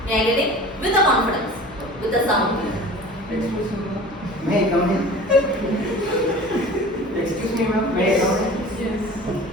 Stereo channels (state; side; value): normal; both; correlation 0.40